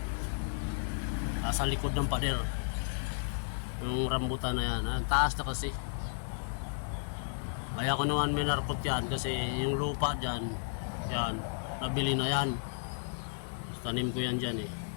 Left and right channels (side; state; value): right; silent; 56 dB below the other